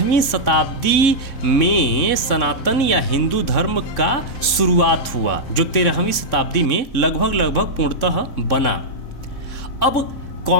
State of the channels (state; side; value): late; right; 3.7 ms